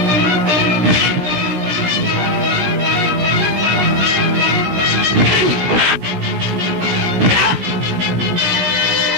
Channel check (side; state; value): left; late; 17 ms